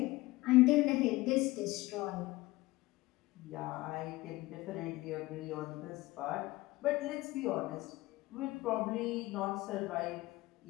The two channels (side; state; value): right; quieter; 19.7 dB